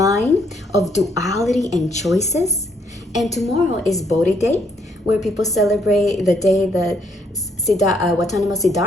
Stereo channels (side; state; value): both; normal; correlation 0.71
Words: of duality and choices. And tomorrow is Bohdi Day, where people celebrate the day that Watanima